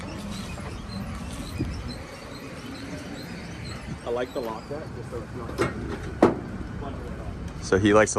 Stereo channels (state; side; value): identical; both; correlation 1.00